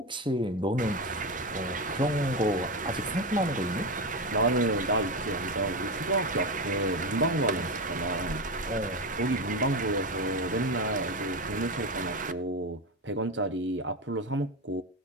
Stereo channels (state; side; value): normal; both; correlation 0.15